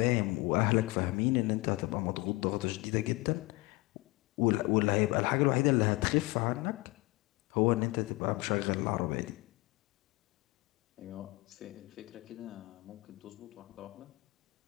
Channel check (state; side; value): quieter; right; 22.6 dB